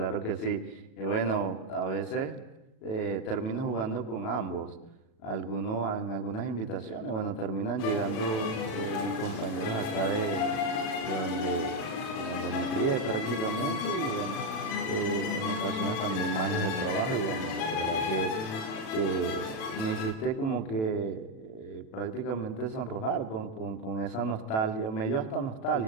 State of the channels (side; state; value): right; late; 37 ms